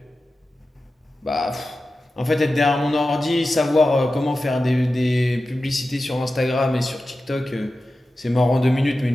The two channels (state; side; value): normal; both; correlation 0.93